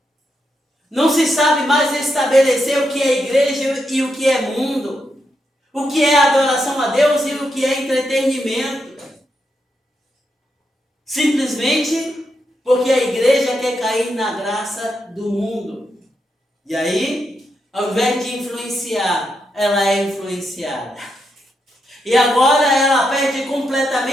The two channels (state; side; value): normal; both; correlation 0.83